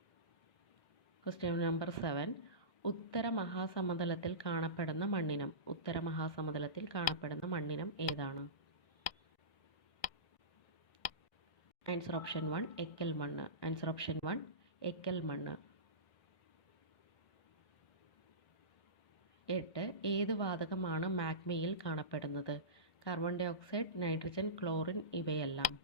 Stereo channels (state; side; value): late; right; 1.6 ms